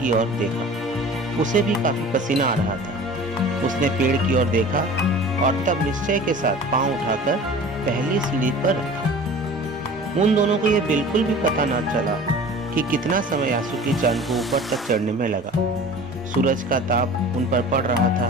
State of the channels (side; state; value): both; normal; correlation 0.41